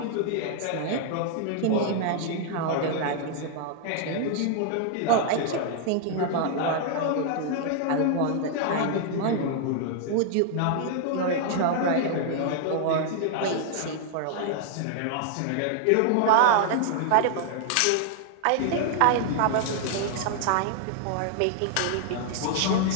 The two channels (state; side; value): different; both; correlation -0.01